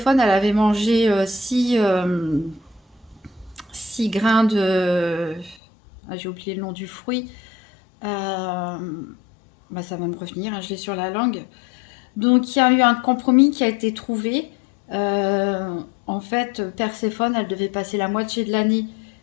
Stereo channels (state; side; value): drops out; right; at 5.6 s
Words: elle avait mangé 6 grains de... Ah, j'ai oublié le nom du fruit. Bah, ça va me revenir, hein, je l'ai sur la langue. Donc il y a eu un compromis qui a été trouvé. En fait, Perséphone, elle devait passer la moitié de l'année